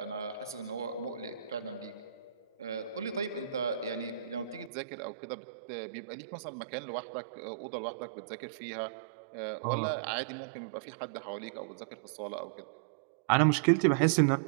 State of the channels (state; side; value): drops out; left; at 4.7 s